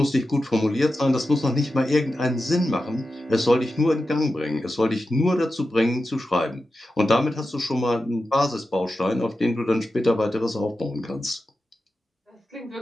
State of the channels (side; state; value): both; normal; correlation 0.91